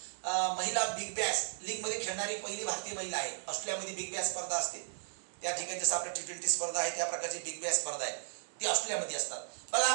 महिला बिग बॅश लीग मध्ये खेळणारी पहिली भारतीय महिला आहे. ऑस्ट्रेलियामध्ये बिग बॅश स्पर्धा असते, त्या ठिकाणी जसं आपल्या T20 स्पर्धा आहे त्या प्रकारची बिग बॅश स्पर्धा आहे, ती ऑस्ट्रेलियामध्ये असतात. बघा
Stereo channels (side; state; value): left; silent; digital silence